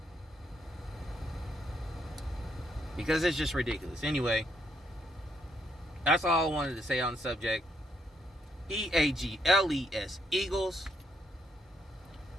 Because it's just ridiculous. Anyway, that's all I wanted to say on the subject. EAGLES, Eagles.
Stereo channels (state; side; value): normal; both; correlation 0.75